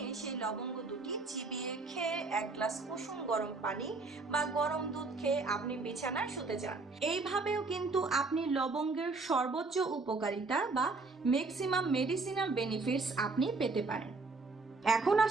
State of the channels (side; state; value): left; quieter; 3.8 dB